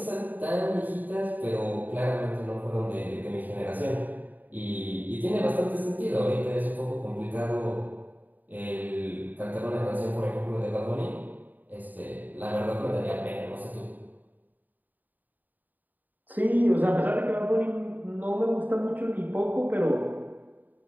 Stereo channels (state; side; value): late; left; 0.084 ms